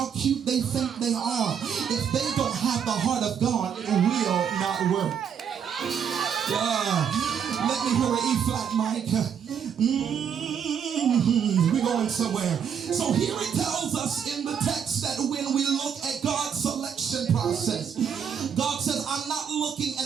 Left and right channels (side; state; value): left; quieter; 7.7 dB